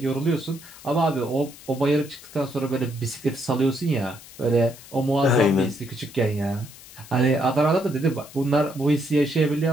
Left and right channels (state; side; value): noise; left; hiss, 19 dB below the sound